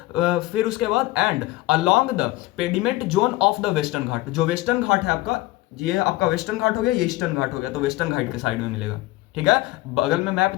फिर उसके बाद and along the pediment zone of the Western Ghat, जो वेस्टर्न घाट है आपका, ये आपका वेस्टर्न घाट हो गया, ये ईस्टर्न घाट हो गया, तो वेस्टर्न घाट के साइड में मिलेगा। ठीक है, बगल में मैप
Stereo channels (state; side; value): quieter; right; 18.4 dB